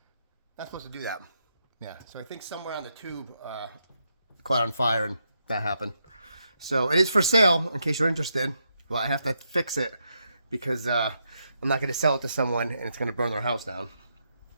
Not supposed to do that. Yeah, so I think somewhere on the tube caught on fire, and that happened. So it is for sale, in case you're interested. Well, I have to fix it because I'm not going to sell it to someone, and it's going to burn their house down.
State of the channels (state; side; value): inverted; both; correlation -0.81